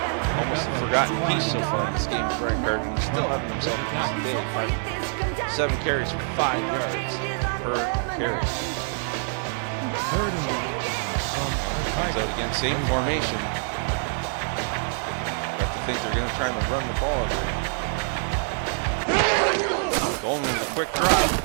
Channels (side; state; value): left; silent; 55 dB below the other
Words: Almost a forgotten piece so far in this game for Brian Carter. He's still having himself a decent day. 7 carries for 5 yards per carry. Third and 1. Comes out again, same formation. I have to think they're going to try and run the ball here. Going with a quick drop.